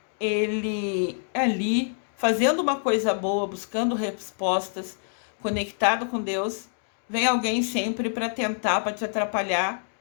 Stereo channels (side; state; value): right; silent; digital silence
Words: ele ali, fazendo uma coisa boa, buscando respostas, conectado com Deus, vem alguém sempre para tentar, para te atrapalhar,